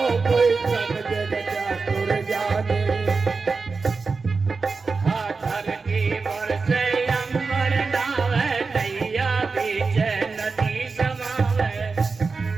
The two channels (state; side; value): quieter; left; 4.4 dB